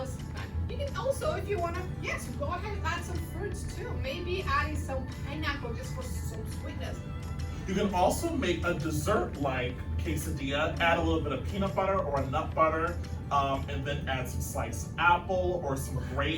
You can also, if you want to, yes, go ahead and add some fruits too. Maybe adding some pineapple just for some sweetness. You can also make a dessert-like quesadilla, add a little bit of peanut butter or a nut butter, and then add some sliced apple or some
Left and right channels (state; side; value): identical; both; correlation 1.00